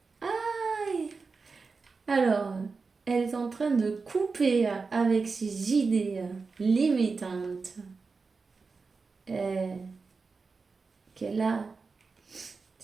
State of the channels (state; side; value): quieter; left; 4.5 dB